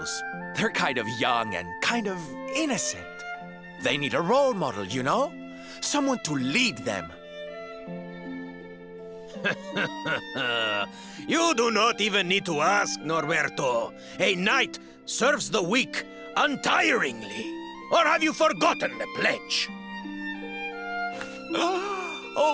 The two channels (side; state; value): both; identical; correlation 1.00